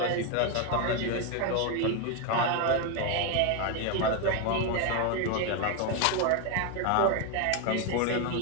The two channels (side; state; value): both; different; correlation 0.01